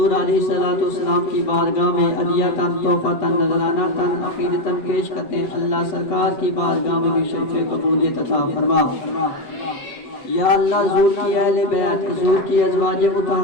علیہ الصلوۃ والسلام کی بارگاہ میں عطیہ تحفہ نذرانہ عقیدتاً پیش کرتے ہیں. اللہ سرکار کی بارگاہ میں بھی شرف قبولیت عطا فرما. یا اللہ حضور کی اہل بیت، حضور کی ازواج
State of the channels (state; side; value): late; right; 8.1 ms